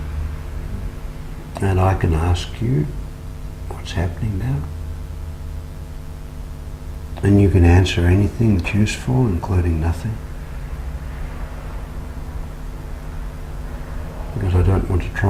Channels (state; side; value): identical; both; correlation 1.00